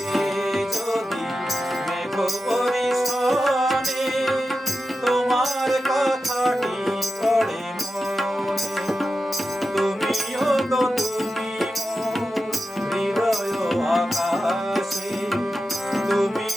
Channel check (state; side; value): normal; both; correlation 0.91